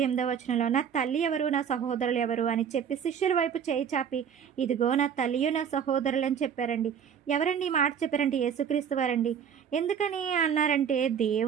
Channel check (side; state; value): left; quieter; 7.9 dB